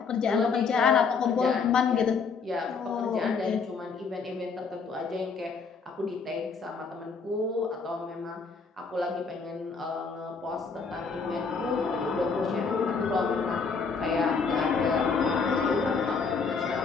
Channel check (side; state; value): right; quieter; 5.1 dB